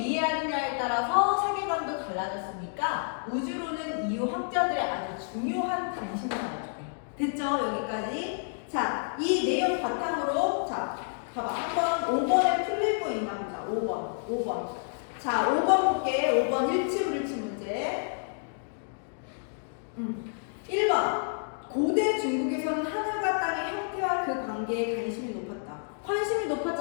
따라서 세계관도 달라졌으니까 우주론은 이후 학자들의 아주 중요한 관심을 가져요. 됐죠? 여기까지. 자, 이 내용 바탕으로 자, 봐봐. 한번 5번에 틀릴 거 있나 보자. 5번. 자, 5번 볼게. 5번 일치불일치 문제. 1번. 고대 중국에서는 하늘과 땅의 형태와 그 관계에 관심이 높았다. 관심이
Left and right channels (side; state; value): right; silent; digital silence